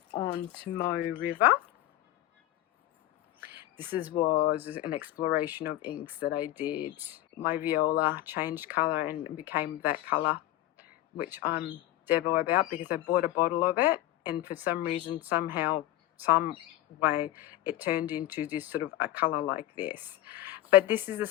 on Tomoe River. This was an exploration of inks that I did. My viola changed colour and became that colour, which I'm devo about because I bought a bottle of it and for some reason, somehow, some way, it turned into this sort of a colour like this. But this is the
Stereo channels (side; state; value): right; quieter; 14.8 dB